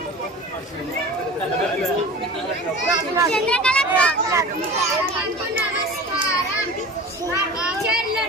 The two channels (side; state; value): both; normal; correlation 0.37